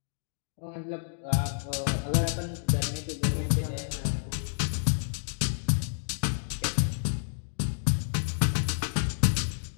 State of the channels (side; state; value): right; silent; digital silence